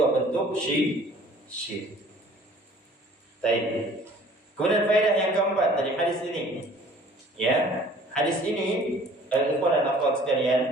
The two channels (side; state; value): both; normal; correlation 0.52